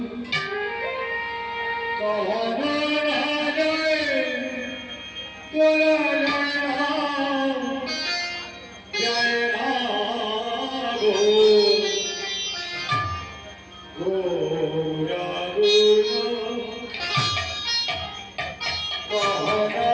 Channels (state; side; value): identical; both; correlation 1.00